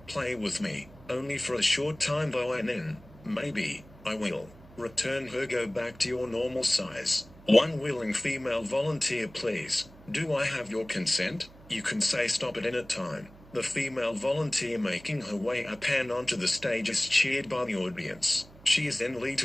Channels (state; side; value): noise; right; hum, 22 dB below the sound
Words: with me, only for a short time though, and then, maybe, I will return her, go back to your normal size. One willing female volunteer, please. Do I have your consent? You can say stop at any time. The female volunteer making her way up and onto the stage is cheered by the audience. She is then led